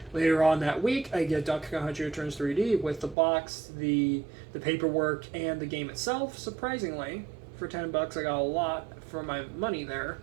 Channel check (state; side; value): drops out; left; at 3.2 s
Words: Later on that week, I get Donkey Kong Country Returns 3D with the box, the paperwork, and the game itself. Surprisingly, for $10, I got a lot for my money there.